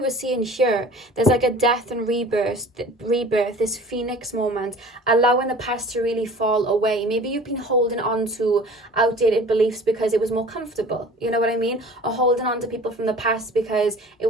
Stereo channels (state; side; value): normal; both; correlation 0.44